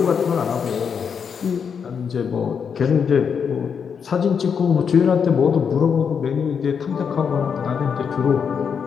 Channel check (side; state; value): right; quieter; 6.7 dB